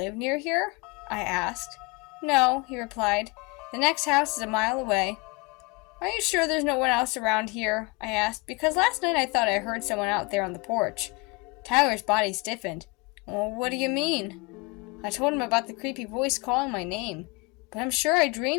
near here?" I asked. "No," he replied. "The next house is a mile away." "Are you sure there's no one else around here?" I asked, because last night I thought I heard someone out there on the porch. Tyler's body stiffened. "Well, what do you mean?" I told him about the creepy voice calling my name. But I'm sure I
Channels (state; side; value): quieter; right; 26.7 dB